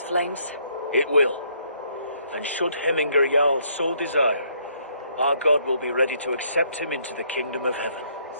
flames? It will. And should Hemminger Jarl so desire, our god will be ready to accept him into the kingdom of heaven.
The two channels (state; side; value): inverted; both; correlation -0.68